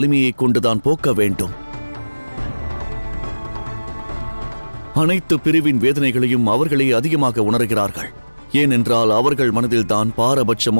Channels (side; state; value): both; inverted; correlation -1.00